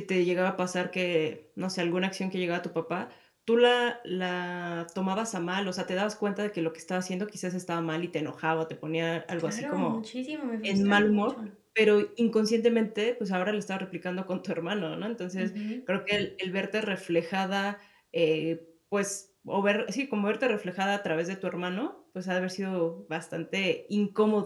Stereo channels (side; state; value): both; identical; correlation 1.00